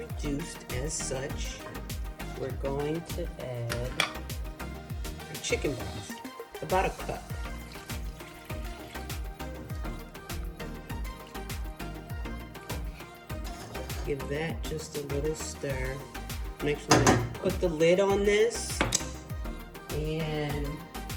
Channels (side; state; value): both; identical; correlation 1.00